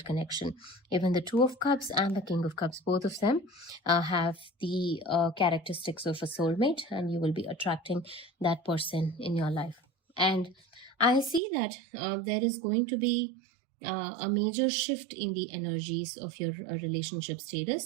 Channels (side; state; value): left; drops out; at 11.4 s